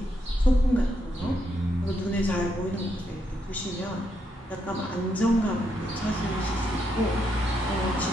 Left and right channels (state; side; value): normal; both; correlation 0.79